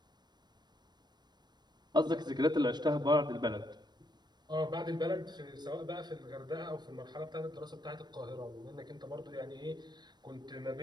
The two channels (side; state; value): left; late; 0.21 ms